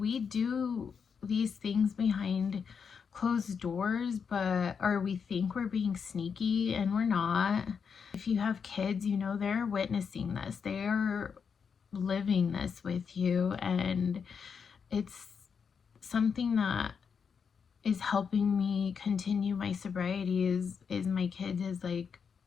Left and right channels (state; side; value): quieter; right; 6.3 dB